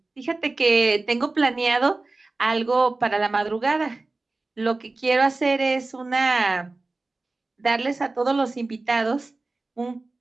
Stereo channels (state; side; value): quieter; left; 3.3 dB